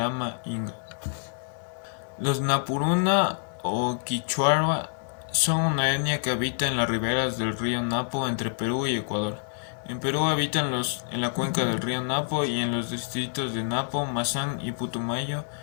inga. Los Napuruna o Quichua son una etnia que habita en las riberas del río Napo entre Perú y Ecuador. En Perú habitan en la cuenca del río Napo y en los distritos de Napo, Mazán y Putumayo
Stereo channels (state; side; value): silent; right; 60 dB below the other